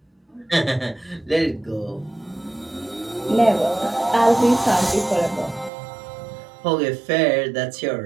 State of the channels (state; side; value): drops out; left; at 5.7 s